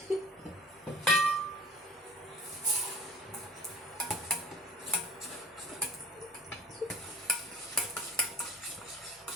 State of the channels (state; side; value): normal; both; correlation 0.46